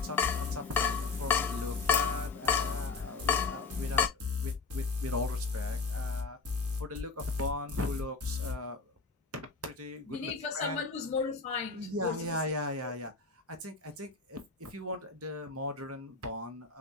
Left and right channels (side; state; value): right; quieter; 4.4 dB